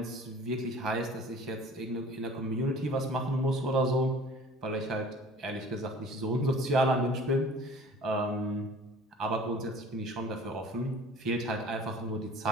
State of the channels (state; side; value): normal; both; correlation 0.47